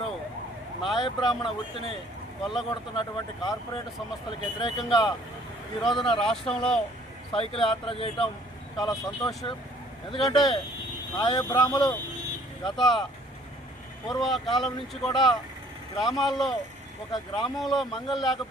నాయ బ్రాహ్మణ వృత్తిని కొల్లగొడుతున్నటువంటి కార్పొరేట్ సంస్థలకు వ్యతిరేకంగా ఈ రోజున రాష్ట్రంలో సైకిల్ యాత్ర చేయటం చాలా సంతోషం. ఎందుకంటే నాయ బ్రాహ్మలు గత పూర్వకాలం నుంచి కూడా గ్రామాల్లో ఒక గ్రామంలో మంగళ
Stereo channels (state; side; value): normal; both; correlation 0.58